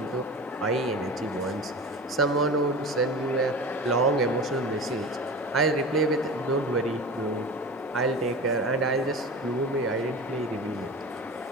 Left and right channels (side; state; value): both; normal; correlation 0.32